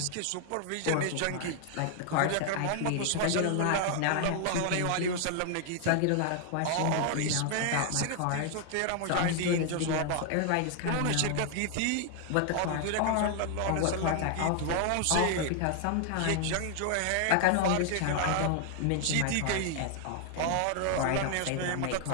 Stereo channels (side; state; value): both; different; correlation 0.00